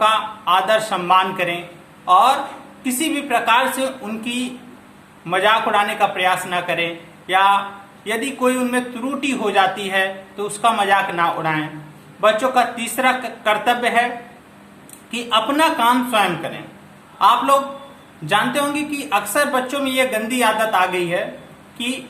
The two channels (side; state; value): both; identical; correlation 1.00